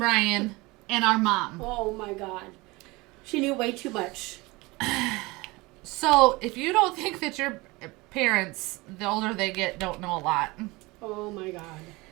and our mom. Oh my God. She knew way too much. So if you don't think that your parents, the older they get, don't know a lot. Oh my God.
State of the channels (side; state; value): left; quieter; 23.0 dB